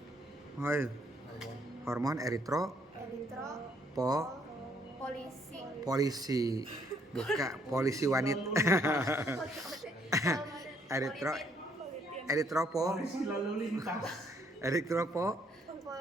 polisi, bukan polisi wanita.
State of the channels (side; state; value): both; normal; correlation 0.68